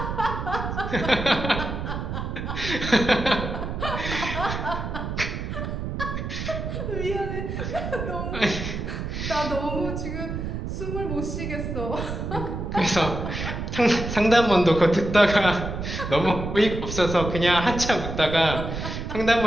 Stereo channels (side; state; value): right; noise; rumble, 5 dB below the sound